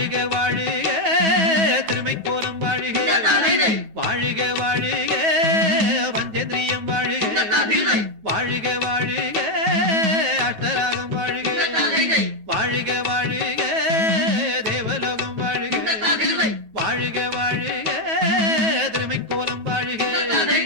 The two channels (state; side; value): late; left; 9.3 ms